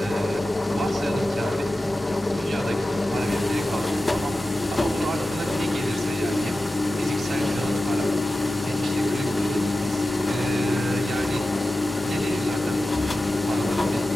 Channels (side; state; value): both; normal; correlation 0.94